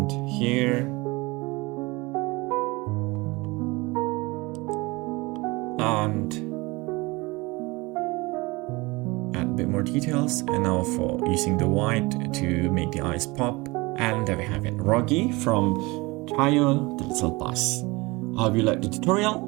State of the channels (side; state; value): left; quieter; 23.7 dB